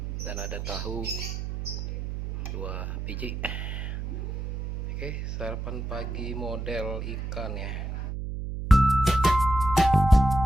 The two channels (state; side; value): noise; right; hum, 5 dB below the sound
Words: dan ada tahu 2 biji. Oke, sarapan pagi model ikan ya.